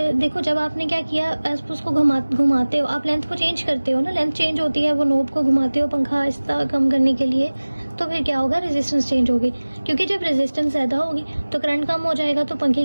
देखो, जब आपने क्या किया, उसको घुमाते हो, आप लेंथ को चेंज करते हो ना, लेंथ चेंज होती है, वो नॉब को घुमाते हो पंखा आहिस्ता कम करने के लिए, तो फिर क्या होगा, रेजिस्टेंस चेंज होगी, क्योंकि जब रेजिस्टेंस ज़्यादा होगी तो करंट कम हो जाएगा, तो पंखे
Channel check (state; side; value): inverted; both; correlation -1.00